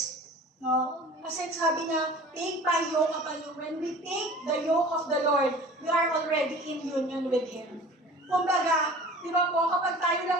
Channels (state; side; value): normal; both; correlation 0.43